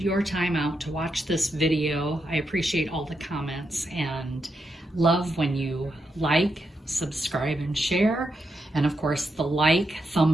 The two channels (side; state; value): both; normal; correlation 0.84